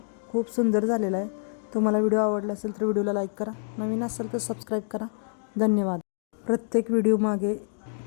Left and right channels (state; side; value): silent; right; 60 dB below the other